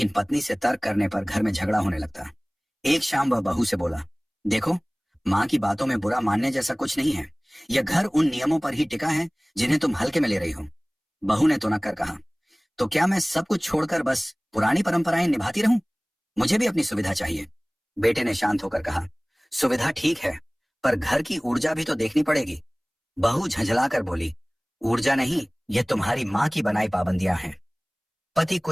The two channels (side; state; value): both; identical; correlation 1.00